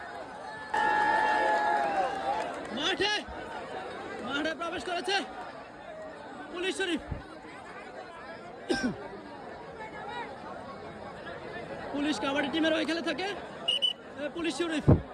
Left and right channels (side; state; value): both; identical; correlation 1.00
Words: মাঠে প্রবেশ করেছে পুলিশ শরীফ পুলিশ কাবাডি টিমের ওই খেলে থাকে পুলিশ শরীফ